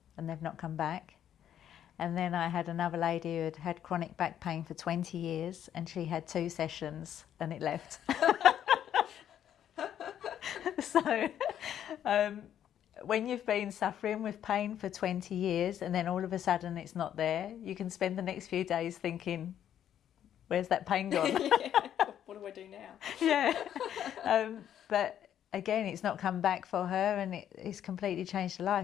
and they've not come back. And then I had another lady who had had chronic back pain for 20 years and she had 2 sessions and it left. So when you've been suffering with pain for 20 years and then all of a sudden it's not there, you can spend the next few days thinking, where's that pain gone? Yeah. What do I do now? Yeah. But again, it's not come back for her and it's completely changed her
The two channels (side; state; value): right; quieter; 10.2 dB